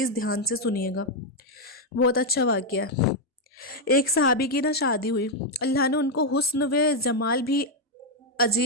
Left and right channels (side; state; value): both; normal; correlation 0.00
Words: ध्यान से सुनिएगा, बहुत अच्छा वाक़या है। एक सहाबी की ना शादी हुई, अल्लाह ने उनको हुस्न व जमाल भी